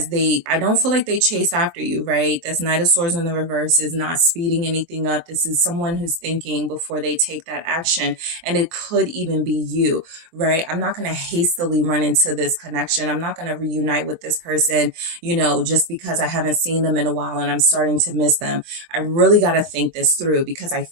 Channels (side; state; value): left; late; 23 ms